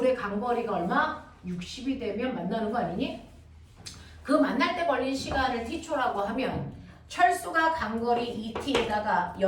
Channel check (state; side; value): identical; both; correlation 1.00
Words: 간거리가 얼마? 60이 되면 만나는 거 아니니? 그 만날 때 걸린 시간을 t초라고 하면 철수가 간거리 2t에다가